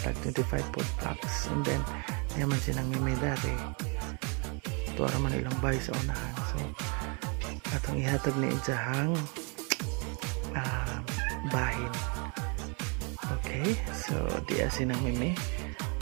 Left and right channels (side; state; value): left; quieter; 34.4 dB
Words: 25 food packs. And then, naman silang mimidari. Tuwara man ilang bahay sa unahan. So, atong ihatag ni Ijahang bahin. Okay, so di asin ang mimi.